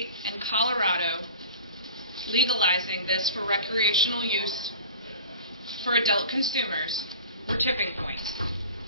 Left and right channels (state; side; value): inverted; both; correlation -0.40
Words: and Colorado legalizing this for recreational use for adult consumers were tipping points.